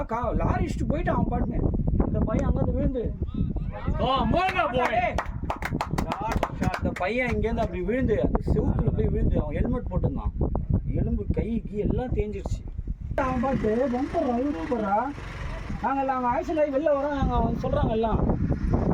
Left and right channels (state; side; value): identical; both; correlation 1.00